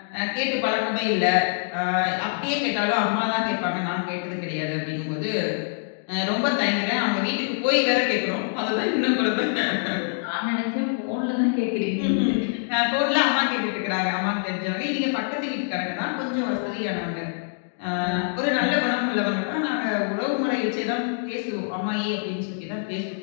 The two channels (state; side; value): silent; right; digital silence